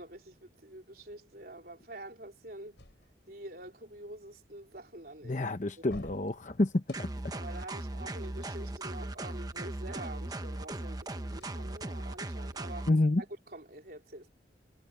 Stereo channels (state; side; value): normal; both; correlation 0.74